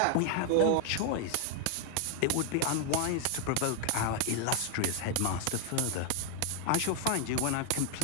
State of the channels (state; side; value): different; both; correlation 0.00